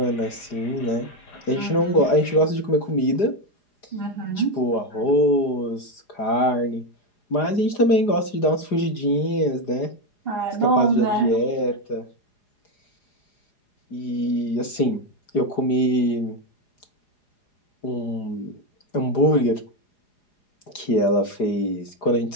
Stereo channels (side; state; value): right; late; 4.9 ms